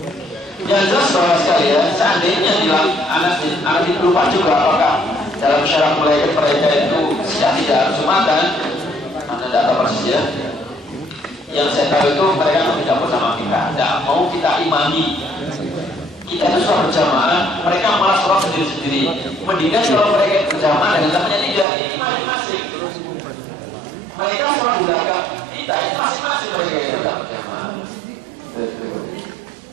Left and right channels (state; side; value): drops out; left; at 21.7 s